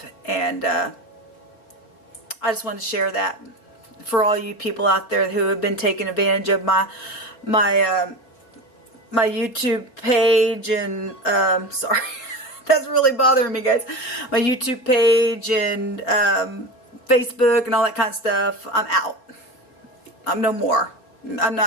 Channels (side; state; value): right; late; 4.0 ms